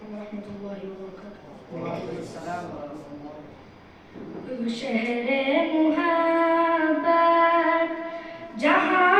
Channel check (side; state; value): both; identical; correlation 1.00